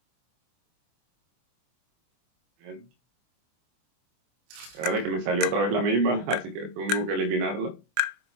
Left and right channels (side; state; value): left; late; 24 ms